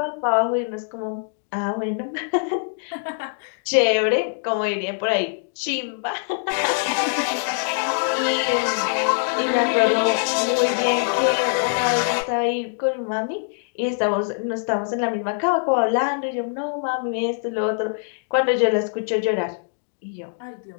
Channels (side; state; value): right; silent; digital silence